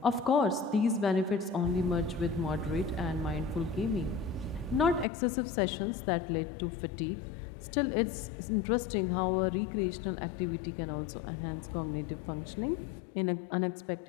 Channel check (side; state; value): right; drops out; at 5.1 s